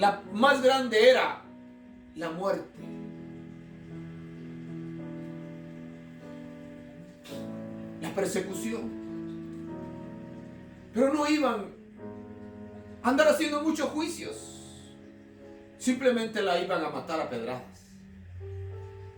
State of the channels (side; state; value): both; identical; correlation 1.00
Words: más grande era la muerte. La persecución. Pero no iban a andar haciendo muchos juicios. Simplemente la iban a matar a pedradas.